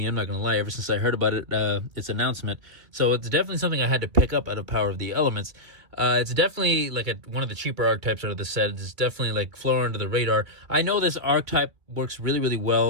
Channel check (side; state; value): left; late; 2.6 ms